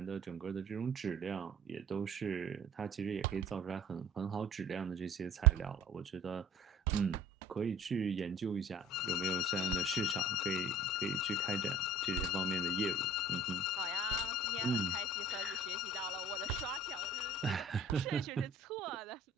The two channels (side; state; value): both; normal; correlation 0.45